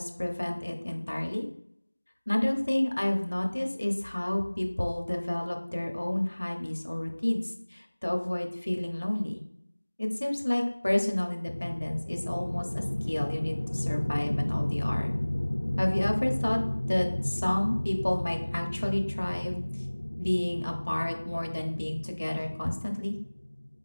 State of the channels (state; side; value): inverted; both; correlation -1.00